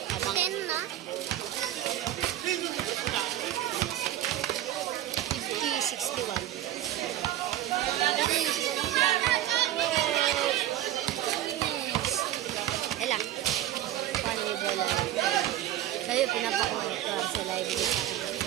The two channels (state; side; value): quieter; left; 13.0 dB